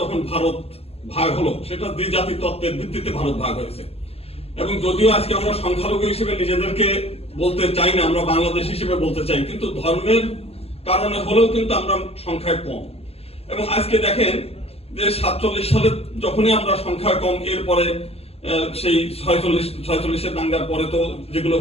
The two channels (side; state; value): right; late; 0.29 ms